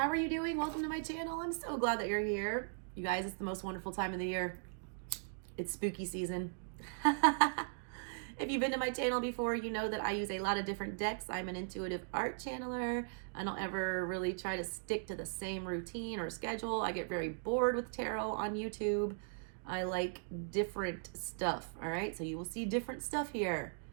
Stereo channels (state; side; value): silent; left; digital silence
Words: are you doing? Welcome to my channel. I'm so glad that you're here. You guys, it's the most wonderful time of the year. It's spooky season. If you've been to my channel before, you know that I use a lot of different decks. I'm an intuitive art channeler. I don't ever really try to stick to the same routine or schedule. I get very bored with tarot on YouTube. I like different stuff, all right? So you will see different stuff here.